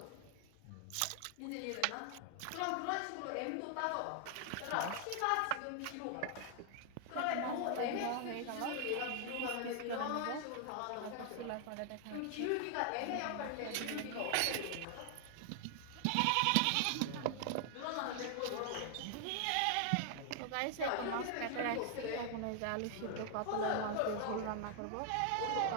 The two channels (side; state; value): both; different; correlation 0.00